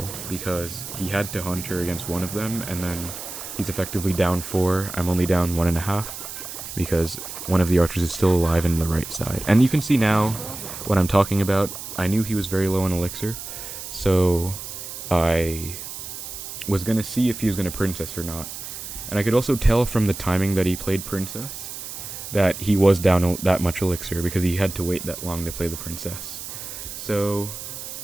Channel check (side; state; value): right; noise; hiss, 9 dB below the sound